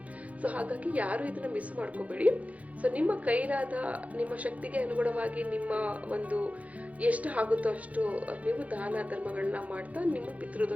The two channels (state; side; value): late; left; 0.068 ms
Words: ಸೊ ಹಾಗಾಗಿ ಯಾರು ಇದನ್ನು ಮಿಸ್ ಮಾಡ್ಕೋಬೇಡಿ. ಸೊ ನಿಮ್ಮ ಕೈಲಾದ, ನಿಮ್ಮ ಶಕ್ತಿಗೆ ಅನುಗುಣವಾಗಿ ನಿಮ್ಮ ಒಂದು ಎಷ್ಟು ಆಗುತ್ತೋ ಅಷ್ಟು ನೀವು ದಾನ ಧರ್ಮಗಳನ್ನ ಮಾಡ್ತಾ ನಿಮ್ಮ